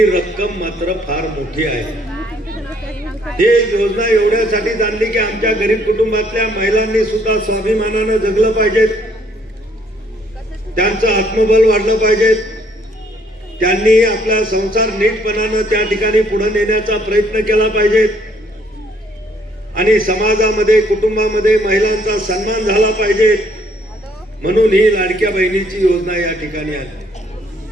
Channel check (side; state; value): both; normal; correlation 0.65